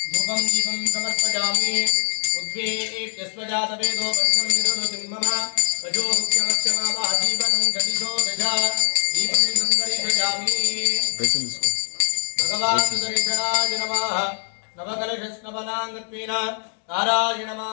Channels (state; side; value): silent; right; 61 dB below the other